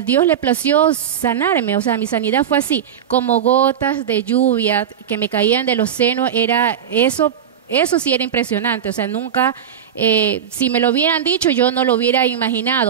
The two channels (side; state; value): left; quieter; 8.9 dB